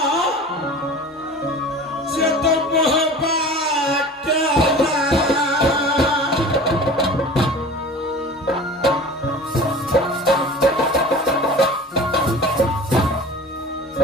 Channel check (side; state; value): both; normal; correlation 0.39